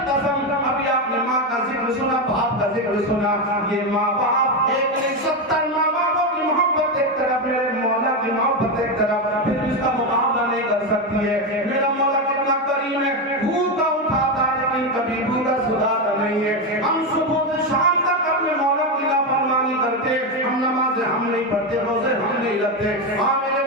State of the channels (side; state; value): both; normal; correlation 0.11